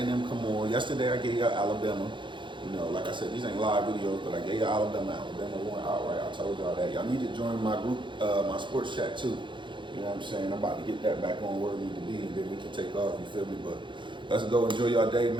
come on. Yesterday I gave y'all Alabama. Like I said, these ain't live videos, but I gave y'all Alabama. Alabama won outright. I told y'all that. Y'all need to join my group, my sports chat too. You know what I'm saying? I'm about to get that back on where we need to be, and then we can take off. You feel me? But let's go enjoy y'all day,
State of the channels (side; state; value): left; late; 0.23 ms